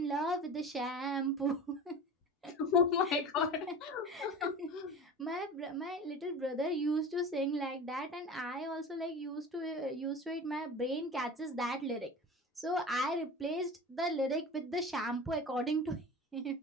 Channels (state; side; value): normal; both; correlation 0.34